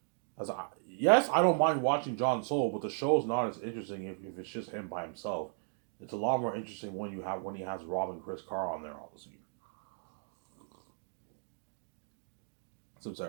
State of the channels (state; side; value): silent; left; 54 dB below the other